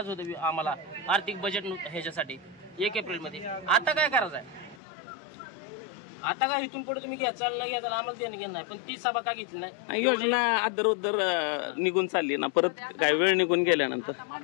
होतं आम्हाला आर्थिक बजेट ह्याच्यासाठी 1 एप्रिलमध्ये. आता काय करायचं आहे? आता काय इथून पुढे तुम्ही घ्या चाललं घ्या चाललं आम्हाला देणं घेणं नाही, पण ती सभा का घेतली नाही? योजना अदर उदर निघून चालली ना, परत काय वेळ निघून गेल्यानंतर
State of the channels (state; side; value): drops out; right; at 4.8 s